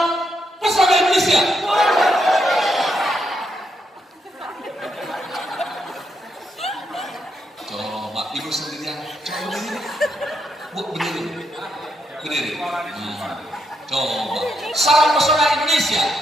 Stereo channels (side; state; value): both; normal; correlation 0.79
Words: pesona Indonesia. Coba Ibu sendirian. Coba begini. Bu, begini. Berdiri. Coba. Salam pesona Indonesia.